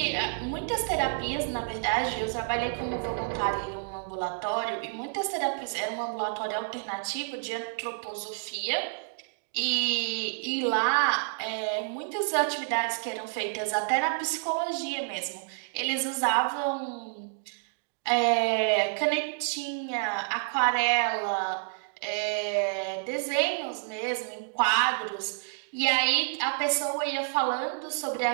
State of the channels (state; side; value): silent; left; digital silence